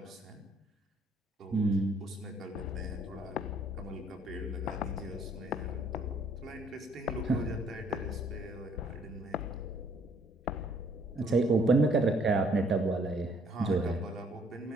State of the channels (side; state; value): both; normal; correlation 0.63